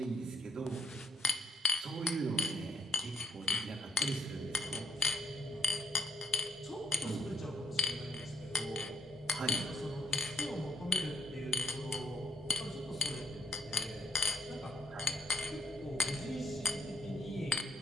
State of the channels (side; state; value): both; normal; correlation 0.69